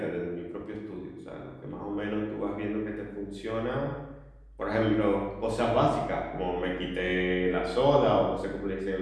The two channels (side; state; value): both; identical; correlation 1.00